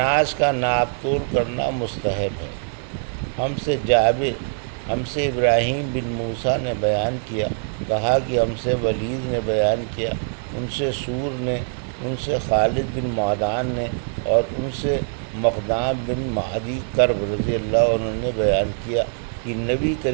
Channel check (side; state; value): left; silent; 64 dB below the other